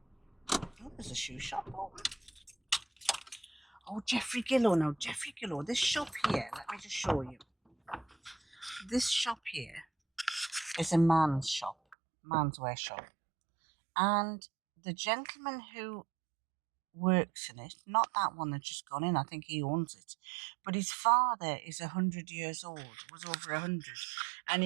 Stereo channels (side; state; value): left; drops out; at 12.0 s